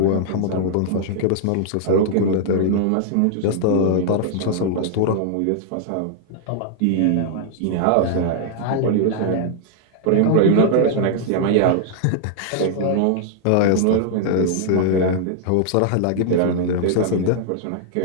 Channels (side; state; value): both; different; correlation -0.01